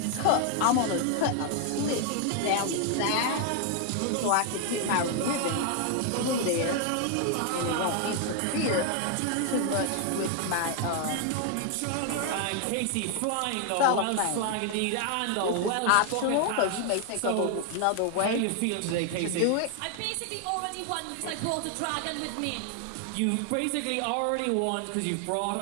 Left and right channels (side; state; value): both; different; correlation 0.00